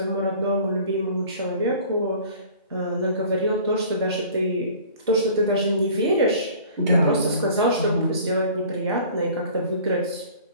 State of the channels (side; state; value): both; inverted; correlation -0.47